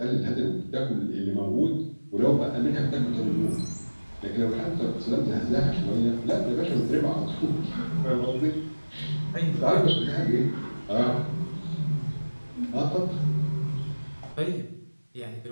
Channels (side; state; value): both; inverted; correlation -1.00